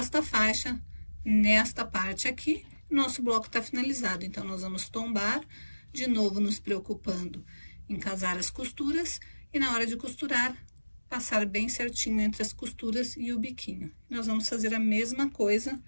faixa nesta parte aqui. Nosso bloco tá finalizado, então nós vamos tombar, de novo nos preocupando em casar as costuras e na hora de costurar, passar bem certinho entre as costuras e o biquinho. Nós vamos fazer a mesma coisa,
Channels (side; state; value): both; inverted; correlation -1.00